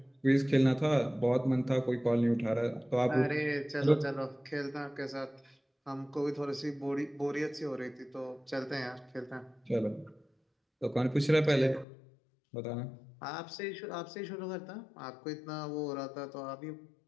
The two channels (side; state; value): right; drops out; at 11.9 s